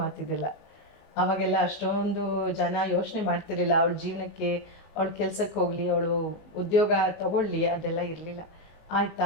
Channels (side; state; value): right; late; 19 ms